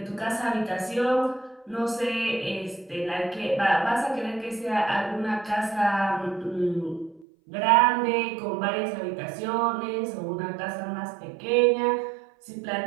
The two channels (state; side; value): drops out; left; at 7.2 s